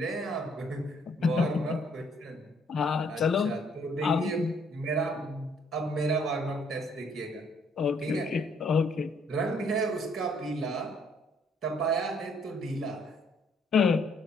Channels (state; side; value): normal; both; correlation 0.66